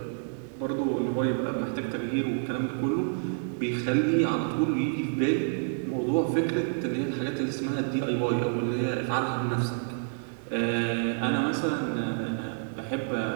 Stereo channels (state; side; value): silent; left; digital silence